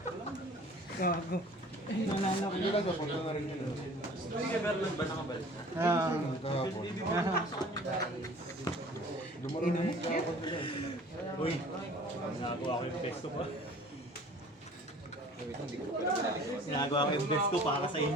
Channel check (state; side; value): normal; both; correlation 0.48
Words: Gago. Nalala ko. Hindi lang kapunta na rin yun. Hindi ka Bernard ba nakabalik? Kahapon. Lumaroon na yung kahapon nila. Uy, nagawa ko yung best ko pa. Ginagawa ko yung best ko para sa